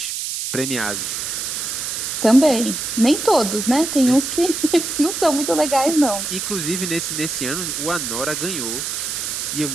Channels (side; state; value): right; noise; hiss, 3 dB below the sound